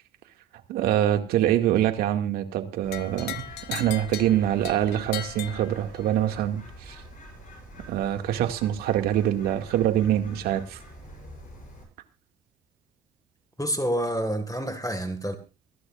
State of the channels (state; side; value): quieter; left; 8.8 dB